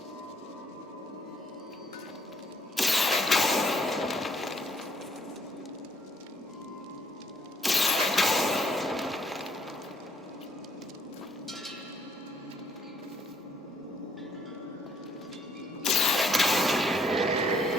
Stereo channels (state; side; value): normal; both; correlation 0.67